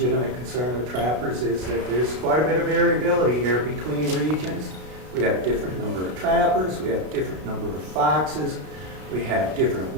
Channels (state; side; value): late; left; 33 ms